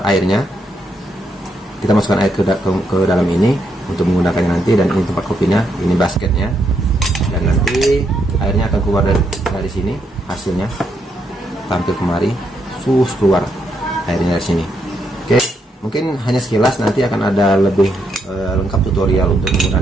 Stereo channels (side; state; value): both; normal; correlation 0.77